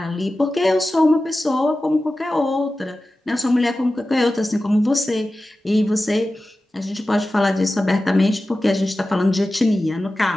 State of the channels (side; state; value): both; normal; correlation 0.95